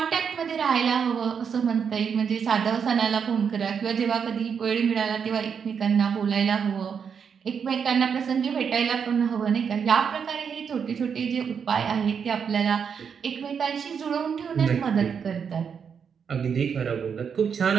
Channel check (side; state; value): left; quieter; 6.8 dB